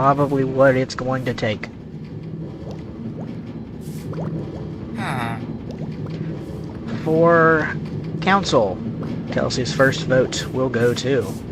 what it's going to take. For Council, Kelsey's first vote will go to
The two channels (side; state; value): both; identical; correlation 1.00